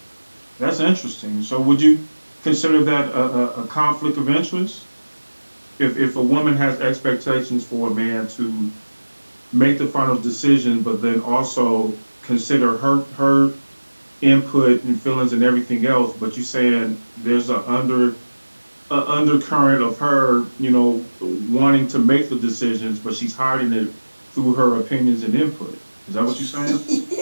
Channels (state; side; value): inverted; both; correlation -1.00